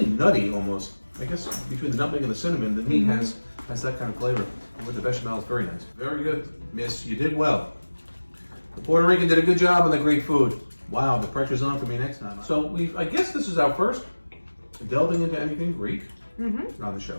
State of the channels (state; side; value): inverted; both; correlation -1.00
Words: nutty almost. I guess between the nutmeg and the cinnamon, the meat has that kind of flavor. And with the bechamel, it's very nice. Very good, Miss. You did well. The Puerto Rican did a good job on the Greek food. Wow, the pressure's on for me next time. So I guess this is our first delving into anything Greek on the